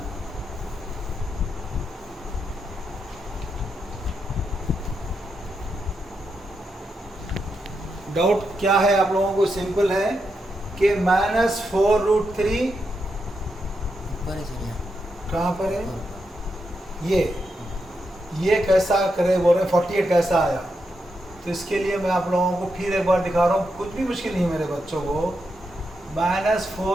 डाउट क्या है आप लोगों को? सिंपल है कि माइनस 4 रूट 3 कहाँ पर है? ये कैसा करे बोल रहे हैं? 48 कैसा आया? तो इसके लिए मैं आप लोगों को फिर एक बार दिखा रहा हूँ, कुछ भी मुश्किल नहीं है मेरे बच्चों को. माइनस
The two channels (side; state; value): both; normal; correlation 0.84